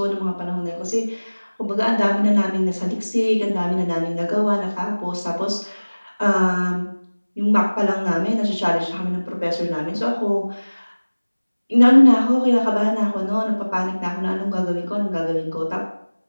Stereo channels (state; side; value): inverted; both; correlation -1.00